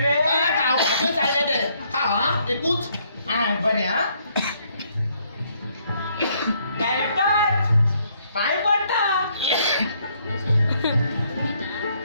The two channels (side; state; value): both; inverted; correlation -0.69